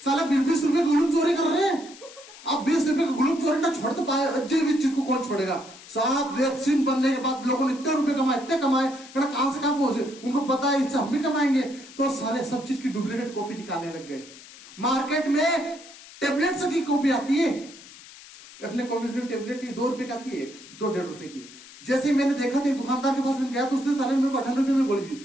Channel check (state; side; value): noise; left; hiss, 19 dB below the sound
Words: साला 20-20 रुपए ग्लूप चोरी कर रहे हैं। अब 20 रुपए का ग्लूप चोरी ना छोड़ तो पाए, जीवित चीज को कौन छोड़ेगा? साहब वैक्सीन बनने के बाद लोगों ने इतने रुपए कमाए, इतने कमाए, कहां से कहां पहुंचे, उनको पता है इससे हम भी कमाएंगे, तो सारे सब चीज की डुप्लीकेट कॉपी निकालने लग गए। मार्केट में टेबलेट्स की कॉपी आती है, अपने कॉम्बिनेशन टेबलेट की 2 रुपए की आती है, 2-1.5 रुपए की। जैसे ही मैंने देखा था, दुकानदार के पास मैंने गया तो उसने सारे मेरे को 58 रुपए में गोली दी।